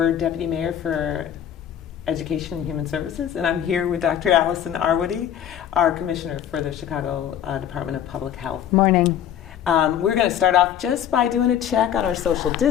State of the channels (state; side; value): quieter; right; 9.9 dB